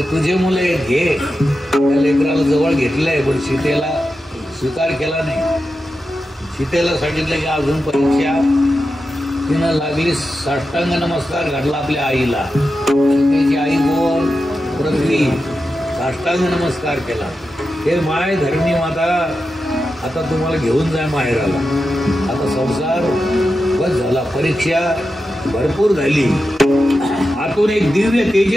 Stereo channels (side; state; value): both; normal; correlation 0.90